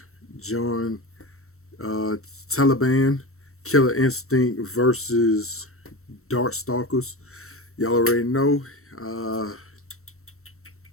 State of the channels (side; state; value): right; late; 0.63 ms